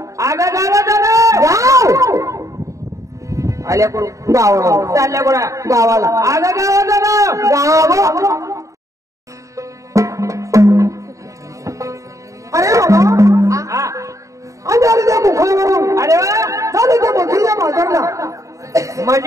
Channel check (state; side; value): late; left; 0.16 ms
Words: आगा गावात गाव आल्या कुठं गावाला चालल्या कुठं गावाला आगा गावात गाव अरे बाबा हा आम्ही आलो त्या मुखावरून अरे वा चालू त्या मथुरीच्या बाजारला